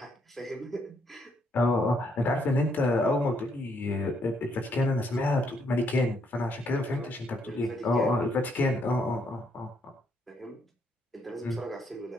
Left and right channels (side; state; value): both; normal; correlation 0.73